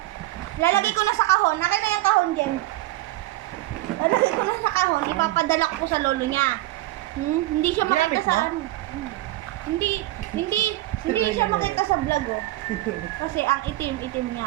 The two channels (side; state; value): left; quieter; 17.5 dB